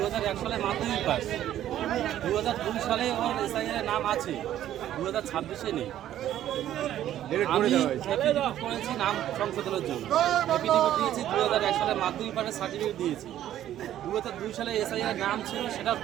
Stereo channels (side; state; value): left; quieter; 12.0 dB